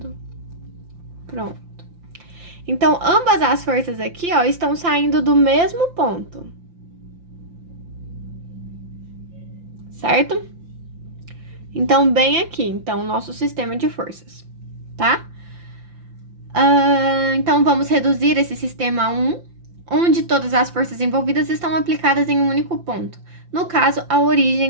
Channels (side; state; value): left; late; 5.8 ms